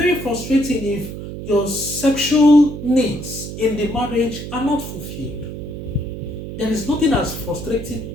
frustrating if your sexual needs in the marriage are not fulfilled. There is nothing as frustrating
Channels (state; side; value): noise; right; hum, 8 dB below the sound